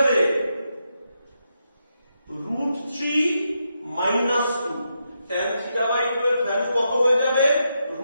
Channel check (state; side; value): inverted; both; correlation -0.83